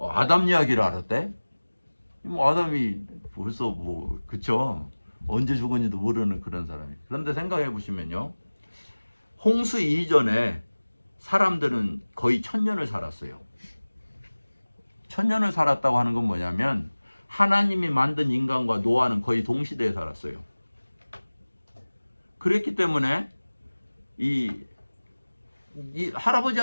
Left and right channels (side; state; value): both; inverted; correlation -1.00